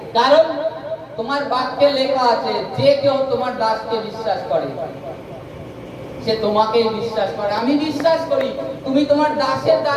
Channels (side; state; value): both; identical; correlation 1.00